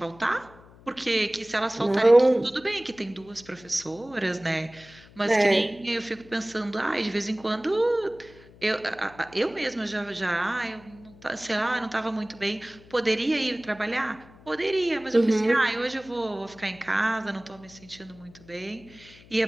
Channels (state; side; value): noise; left; hum, 23 dB below the sound